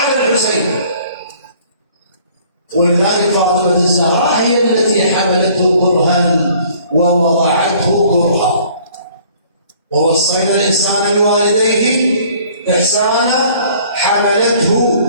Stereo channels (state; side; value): inverted; both; correlation -0.56